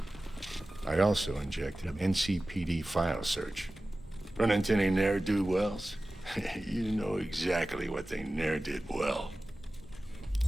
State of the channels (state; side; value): normal; both; correlation 0.96